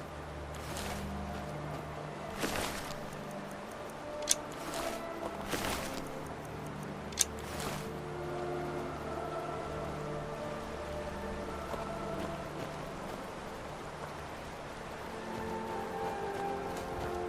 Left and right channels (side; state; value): both; identical; correlation 1.00